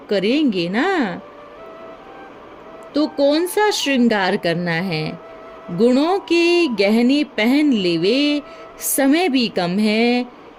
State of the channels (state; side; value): identical; both; correlation 1.00